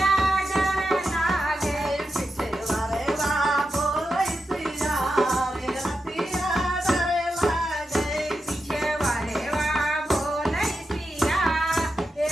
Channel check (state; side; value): normal; both; correlation 0.88